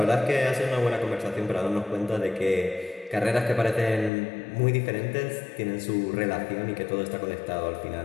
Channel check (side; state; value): right; drops out; at 4.1 s